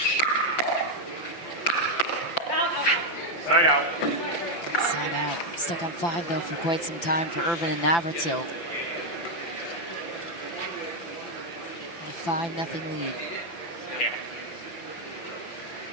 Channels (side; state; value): right; late; 5.9 ms